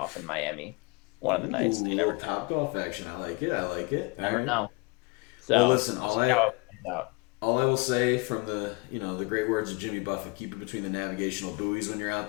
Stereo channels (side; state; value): right; quieter; 28.2 dB